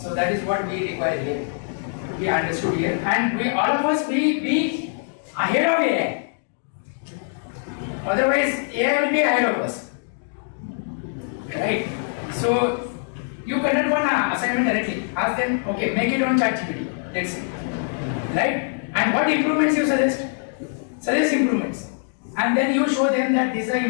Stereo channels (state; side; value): silent; right; digital silence